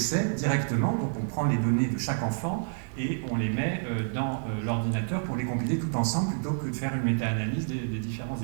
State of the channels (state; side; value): silent; left; 59 dB below the other